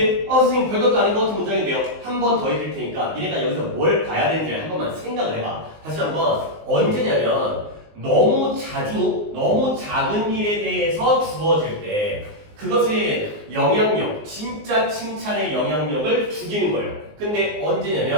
선생님 별것도 아닌 것 같은 문장인데요. 한 번 더 읽을 테니까 니네가 여기서 뭘 봐야 되는지 한 번만 생각을 해봐. 다시 한번 언제냐면 너무 자주 너무 작은 일에 대해서 주어질 때 그것의 영향력, 진짜 칭찬의 영향력을 죽이는 거예요. 근데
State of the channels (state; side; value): late; left; 19 ms